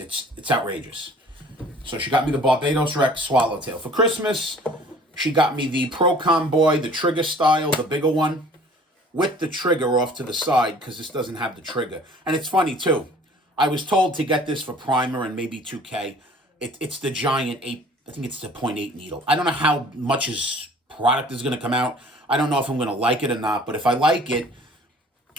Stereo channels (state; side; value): normal; both; correlation 0.51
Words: outrageous. So she got me the Barbados Rex Swallowtail. For Christmas, she got me the Procom Boy, the trigger style, the bigger one, with the trigger off to the side, because this doesn't have the trigger. And it's funny, too. I was told to get this for Primer and maybe 2K. It's the giant 8, I think it's the .8 needle. I don't know how much his product is going to come out. I don't know if I'm going to like it or not, but if I like it,